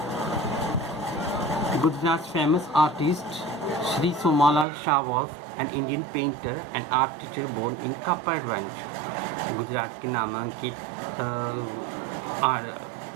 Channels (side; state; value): left; drops out; at 4.7 s